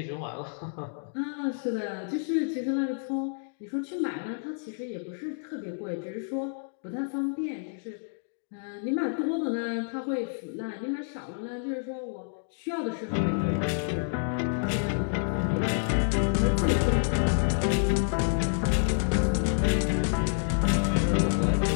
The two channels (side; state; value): right; silent; digital silence